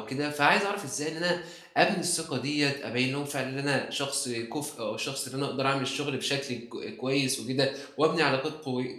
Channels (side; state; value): both; identical; correlation 1.00